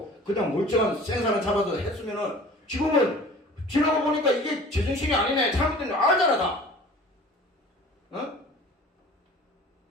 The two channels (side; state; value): both; normal; correlation 0.45